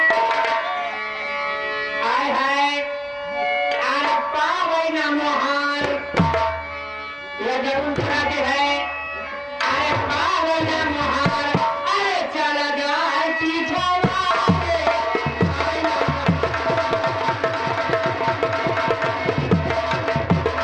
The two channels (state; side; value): identical; both; correlation 1.00